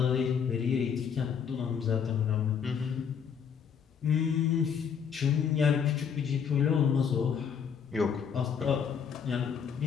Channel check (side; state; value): right; quieter; 7.2 dB